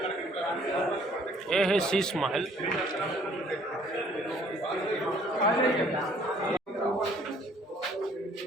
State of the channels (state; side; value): normal; both; correlation 0.59